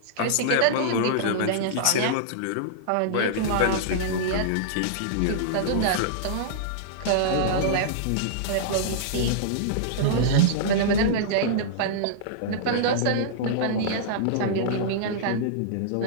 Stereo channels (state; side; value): different; both; correlation -0.02